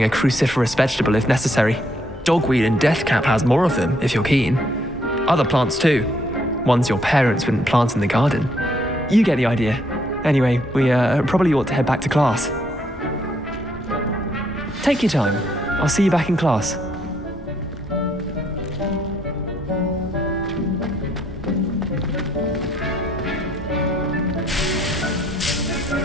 a cruciferous vegetable if necessary. Dogweed and deathcap has more of them, if you're keen. Other plants too. Ones your parents wouldn't plant in the garden. You get the idea. Anyway, we probably ought to head back to class. Take your time. I'll see you back in class.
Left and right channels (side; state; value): both; normal; correlation 0.70